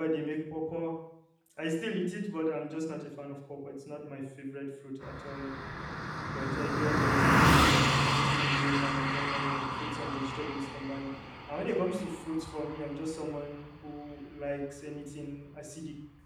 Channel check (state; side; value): identical; both; correlation 1.00